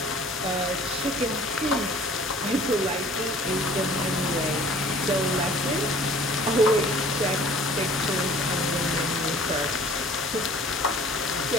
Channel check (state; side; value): normal; both; correlation 0.50